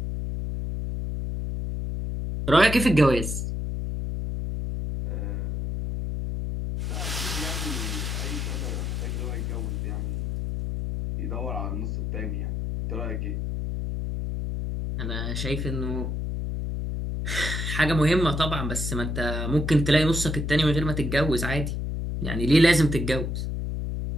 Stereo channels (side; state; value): left; noise; hum, 2 dB below the sound